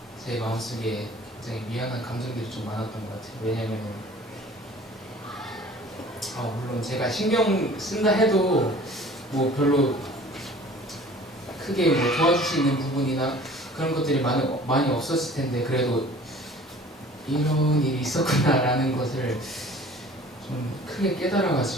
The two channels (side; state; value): both; normal; correlation 0.47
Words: 제 마음속에 굉장히 미안한 감정들이 좀 많았던 것 같아요. 왜냐면 물론 제가 신경 쓴다 해도 뭐 별로 크게 뭐 도와줄 수 있는 부분이나 그런 것들이 많이 없었을 텐데 그래도 이런 일이 있었구나라는 것을 좀 크게